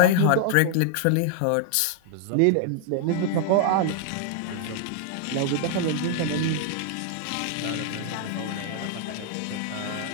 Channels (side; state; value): both; different; correlation 0.00